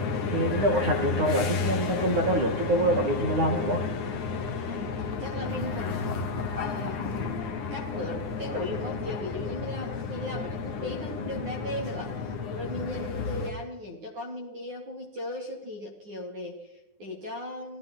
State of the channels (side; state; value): left; late; 9.7 ms